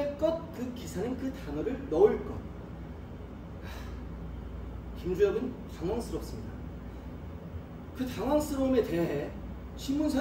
것. 그 기사는 그 단어를 넣을 것. 김주혁은 당황스럽습니다. 그 당황스러움에 대해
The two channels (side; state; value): both; identical; correlation 1.00